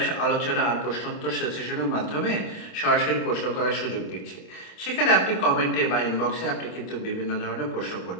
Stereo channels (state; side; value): late; right; 26 ms